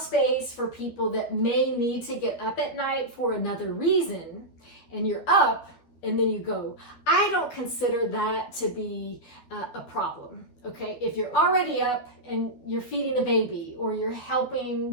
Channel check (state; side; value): late; right; 12 ms